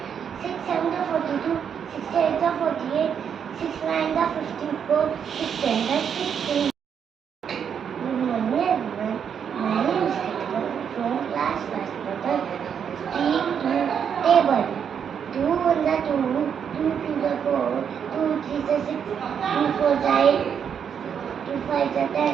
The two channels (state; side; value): quieter; left; 7.7 dB